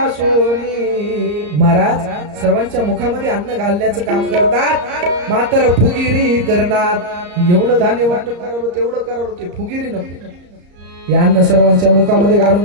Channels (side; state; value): left; late; 34 ms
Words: महाराज सर्वांच्या मुखामध्ये अन्न घालण्याचं काम करतात मात्र फुगिरी करणार एवढं धान्य वाटप करावं तेवढं करावं ते फुगिरी नको हे अन्न सर्वांच्या मुखामध्ये घालून